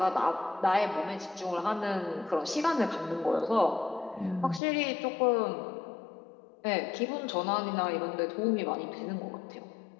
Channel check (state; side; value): drops out; right; at 4.6 s